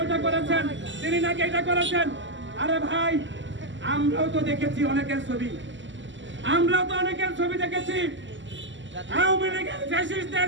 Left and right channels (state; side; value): late; left; 0.54 ms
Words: ওইটা করেছেন, তিনি নাকি এটা করেছেন। আরে ভাই, আমরাও তো দেখেছি অনেকের ছবি, আমরাও তো অনেকের ছবি দেখেছি, আওয়ামী লীগের